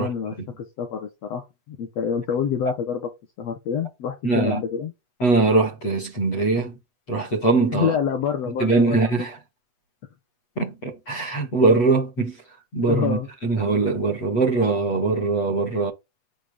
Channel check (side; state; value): right; late; 8.2 ms